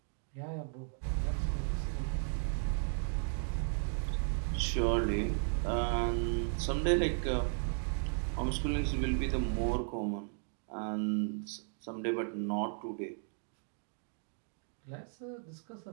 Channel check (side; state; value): left; silent; 54 dB below the other